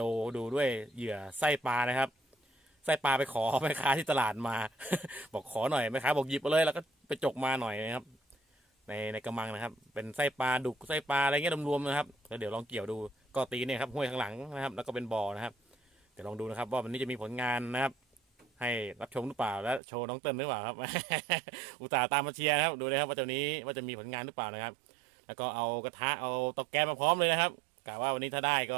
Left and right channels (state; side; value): drops out; left; at 19.8 s